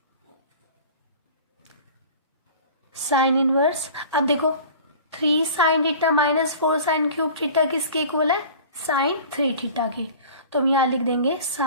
Sine inverse, अब देखो 3 sine theta minus 4 sine cube theta किसके इक्वल है? साइन 3 थीटा के। तो हम यहाँ लिख देंगे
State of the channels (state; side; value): inverted; both; correlation -0.42